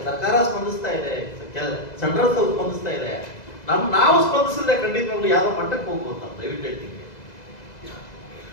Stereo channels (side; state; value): right; late; 2.0 ms